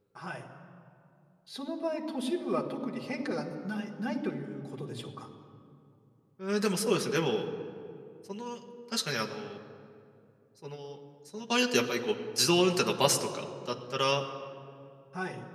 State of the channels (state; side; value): identical; both; correlation 1.00